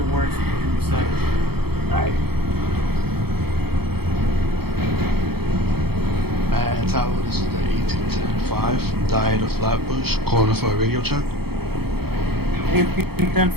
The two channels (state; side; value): late; left; 0.96 ms